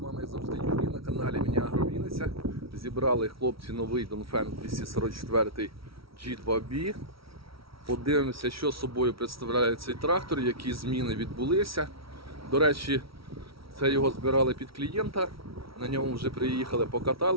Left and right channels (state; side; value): late; left; 0.75 ms